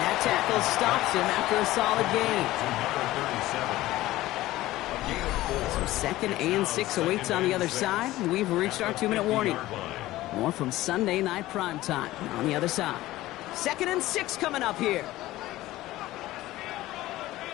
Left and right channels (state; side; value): quieter; right; 16.6 dB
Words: that tackle stops him after a solid gain. So 2nd and 6 awaits on the other side. We've reached our 2-minute warning. More from Sunday Night Primetime on the other side. 2nd and 6 coming up here.